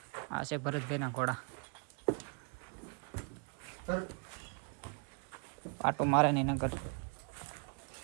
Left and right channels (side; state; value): left; quieter; 39.6 dB